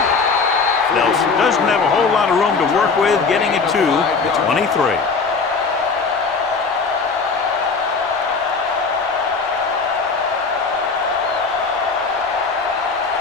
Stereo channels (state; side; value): quieter; right; 4.7 dB